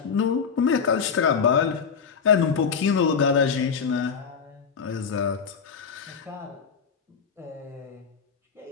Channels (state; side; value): quieter; right; 6.2 dB